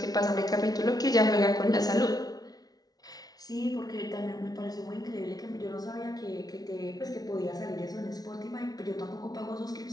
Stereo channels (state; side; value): late; right; 0.19 ms